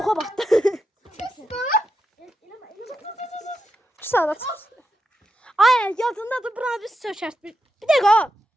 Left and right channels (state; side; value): normal; both; correlation 0.86